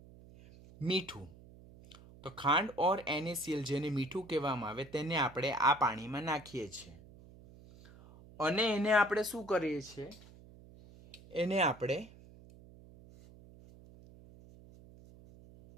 મીઠું. તો ખાંડ ઓર NaCl જેને મીઠું કહેવામાં આવે તેને આપણે આ પાણીમાં નાખીએ છીએ અને એને આપણે શું કરીએ છીએ? એને આપણે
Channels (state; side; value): noise; right; hum, 21 dB below the sound